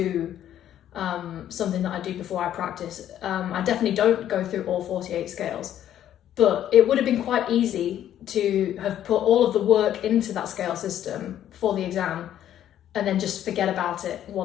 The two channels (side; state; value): right; quieter; 11.1 dB